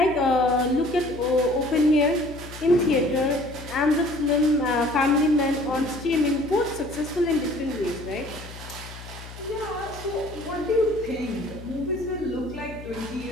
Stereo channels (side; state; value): left; noise; hum, 15 dB below the sound